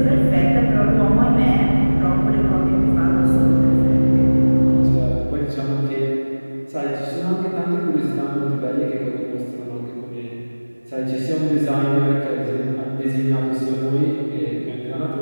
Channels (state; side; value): inverted; both; correlation -1.00